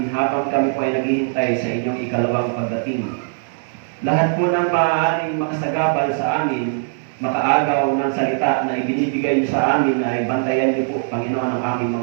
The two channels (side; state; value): left; silent; digital silence